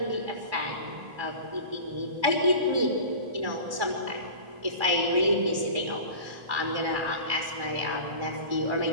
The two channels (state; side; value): late; left; 1.4 ms